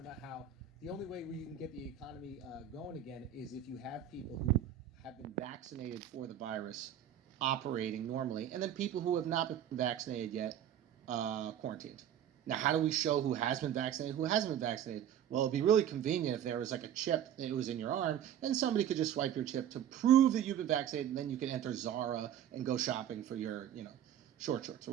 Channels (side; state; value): left; quieter; 10.2 dB